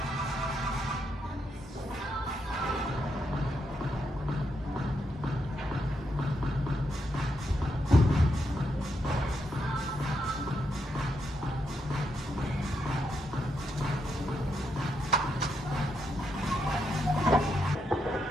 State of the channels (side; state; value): both; normal; correlation 0.81